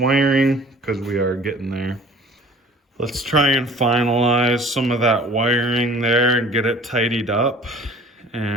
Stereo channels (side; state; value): both; normal; correlation 0.48